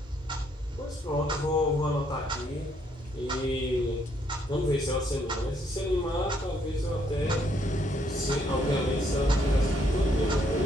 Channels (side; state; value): both; normal; correlation 0.70